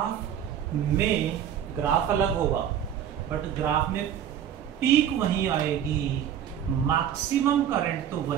में, ग्राफ अलग होगा बट ग्राफ में पीक वहीं आएगी, मैक्सिमम करंट तो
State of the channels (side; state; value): left; quieter; 9.6 dB